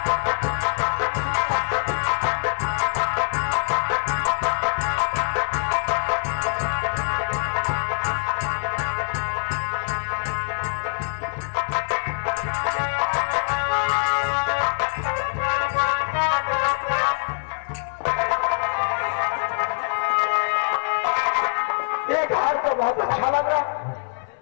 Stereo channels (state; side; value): silent; right; 59 dB below the other